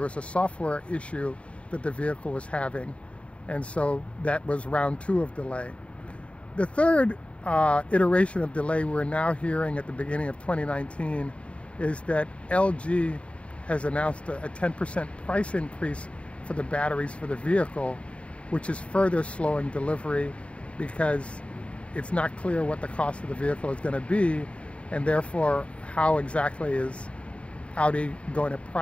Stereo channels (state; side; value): late; right; 0.062 ms